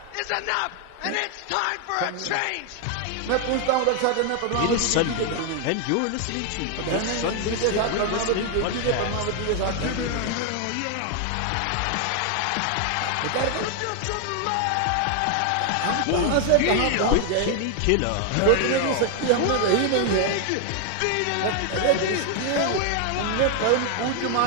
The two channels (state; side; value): different; both; correlation 0.00